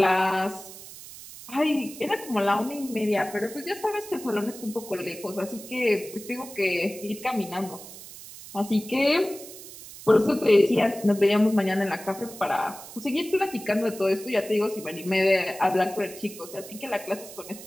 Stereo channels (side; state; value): right; noise; hiss, 15 dB below the sound